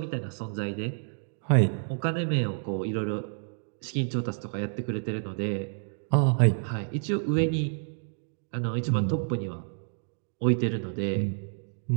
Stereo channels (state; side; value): silent; left; digital silence